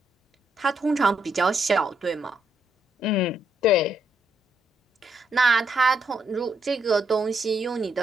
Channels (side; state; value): both; normal; correlation 0.76